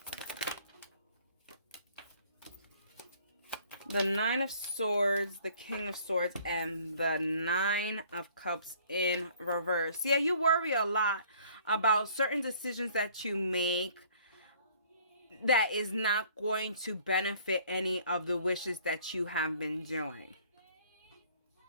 The 9 of Swords, the King of Swords, and the 9 of Cups in reverse. Yeah, you worry a lot about certain decisions that you make that is not going to benefit any of the wishes that you have been doing.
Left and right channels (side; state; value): both; inverted; correlation -0.56